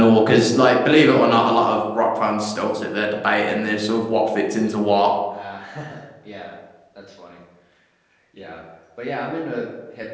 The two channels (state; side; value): identical; both; correlation 1.00